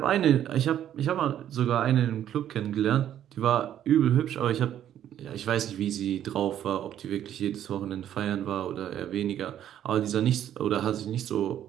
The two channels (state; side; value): quieter; left; 10.9 dB